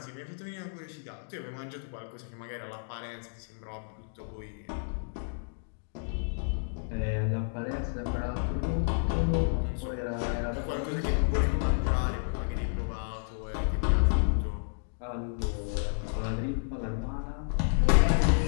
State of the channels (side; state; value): right; silent; digital silence